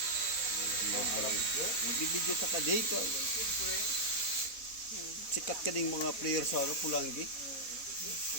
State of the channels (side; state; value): right; late; 4.1 ms